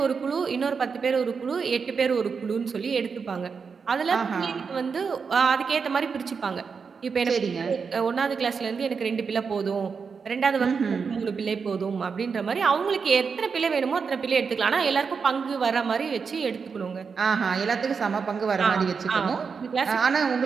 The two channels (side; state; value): left; quieter; 5.6 dB